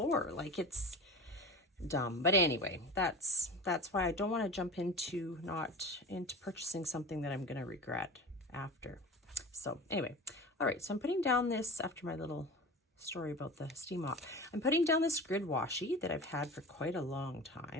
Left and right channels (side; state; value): both; normal; correlation 0.32